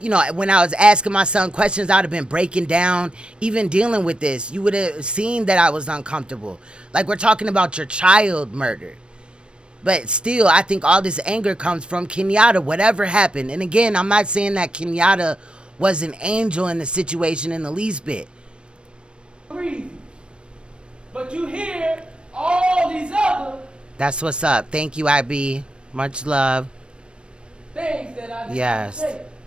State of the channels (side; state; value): left; late; 0.056 ms